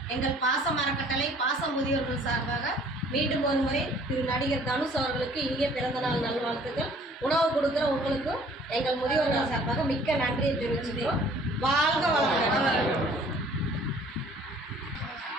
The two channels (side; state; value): both; normal; correlation 0.55